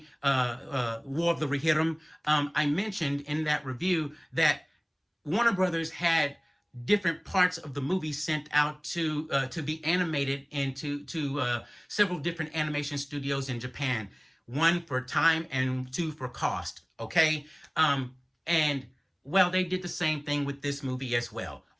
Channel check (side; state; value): both; identical; correlation 1.00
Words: War of the Rohirrim, I mentioned in that review that Warner Brothers had different parts of the movie sent out to be animated into several different animation studios in Japan. One for time and two for cost. Okay, and well, they did the same thing with this movie as well.